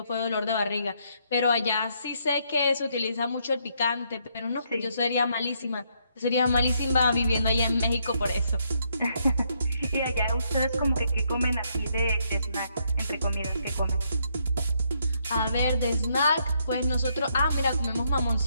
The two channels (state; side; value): inverted; both; correlation -0.73